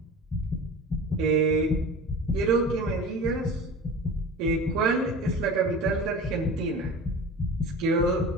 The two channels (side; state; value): both; normal; correlation 0.35